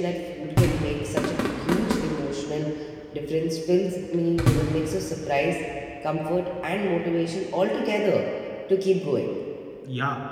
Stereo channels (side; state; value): both; identical; correlation 1.00